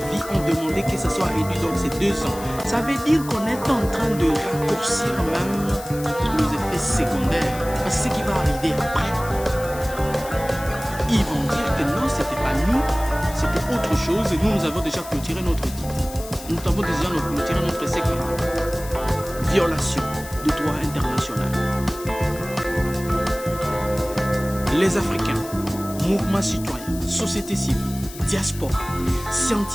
ont demandé que ça soit réduit dans ces 2 ans. Ça veut dire qu'on est en train de raccourcir même les effets secondaires. Parce que ce qui va arriver après, ils vont dire que non, c'était pas nous, c'était autre chose et nous avons déjà clôturé notre titre. Nous avons déjà clôturé notre essai. Violation du droit international. Les Africains, mouvements citoyens, société civile, diaspora,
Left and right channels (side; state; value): left; noise; hiss, 15 dB below the sound